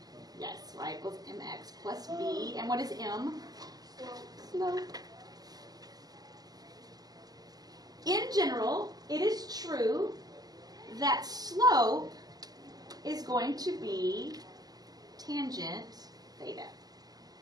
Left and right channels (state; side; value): late; left; 0.19 ms